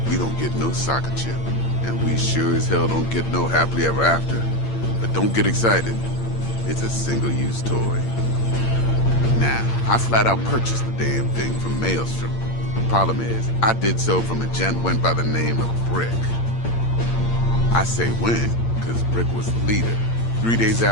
we don't get no soccer chip. And we sure as hell don't get no happily ever after. But don't get excited. It's a single-use toy. Now, I flat out purchased the damn thing from Maelstrom. Problem is, I did so from a gent went by the name of Brick. I say when, because Brick was the leader. 3 days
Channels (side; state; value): right; late; 8.7 ms